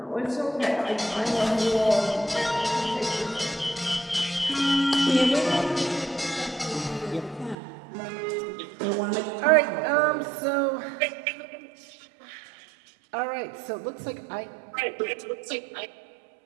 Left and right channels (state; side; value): drops out; left; at 7.6 s